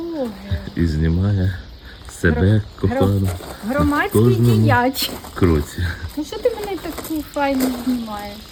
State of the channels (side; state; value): both; identical; correlation 1.00